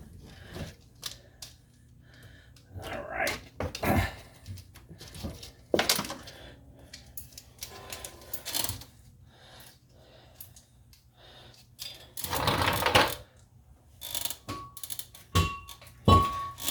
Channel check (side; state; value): both; identical; correlation 1.00